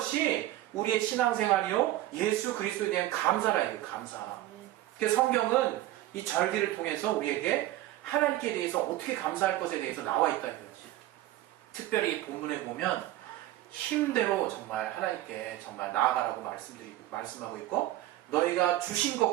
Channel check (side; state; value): left; quieter; 15.0 dB